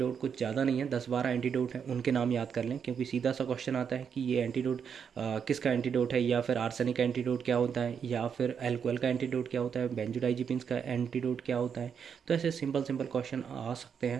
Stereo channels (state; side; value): quieter; left; 7.1 dB